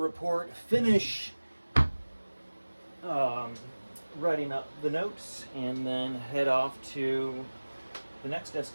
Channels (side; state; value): both; inverted; correlation -1.00